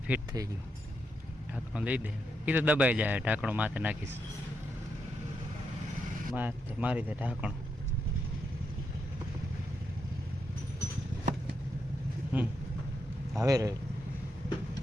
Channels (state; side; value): normal; both; correlation 0.82